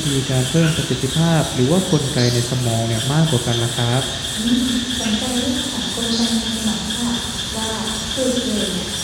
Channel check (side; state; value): both; identical; correlation 1.00